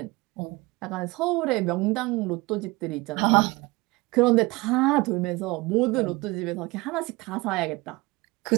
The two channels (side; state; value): left; quieter; 22.9 dB